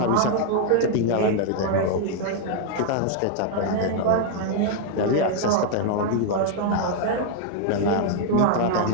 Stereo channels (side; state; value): both; different; correlation -0.01